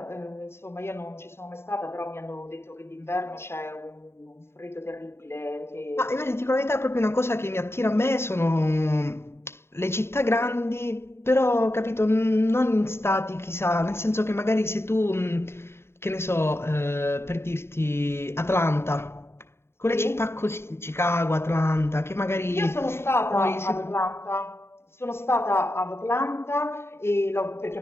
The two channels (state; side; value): late; right; 0.12 ms